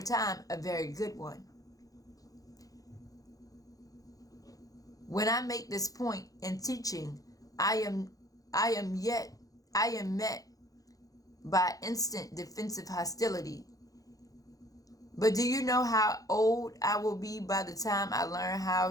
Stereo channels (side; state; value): right; late; 0.17 ms